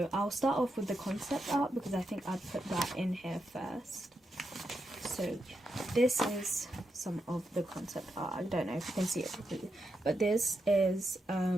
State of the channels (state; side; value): normal; both; correlation 0.85